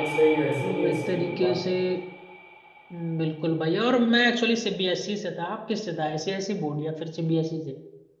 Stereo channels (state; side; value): identical; both; correlation 1.00